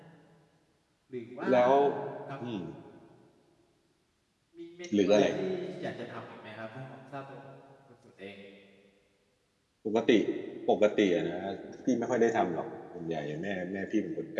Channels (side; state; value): both; identical; correlation 1.00